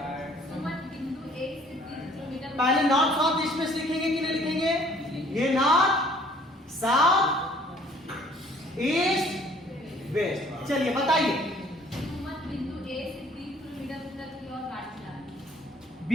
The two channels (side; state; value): both; normal; correlation 0.57